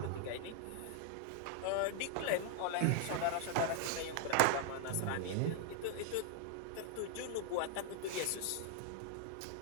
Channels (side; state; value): both; different; correlation 0.00